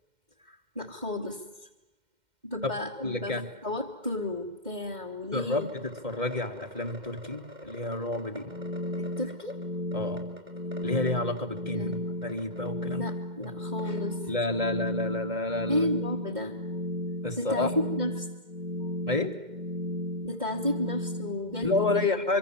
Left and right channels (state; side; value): late; left; 2.1 ms